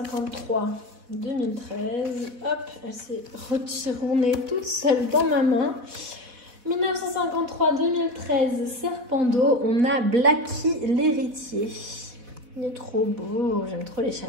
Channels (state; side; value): late; left; 4.1 ms